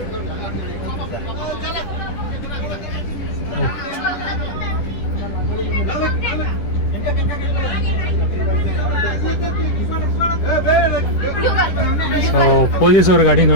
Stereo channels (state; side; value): late; right; 10 ms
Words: ಸೊ ಪೊಲೀಸವ್ರ ಗಾಡಿ